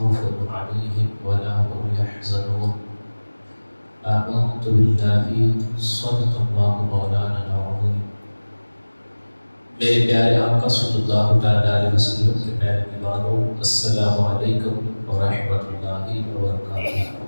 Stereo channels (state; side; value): inverted; both; correlation -1.00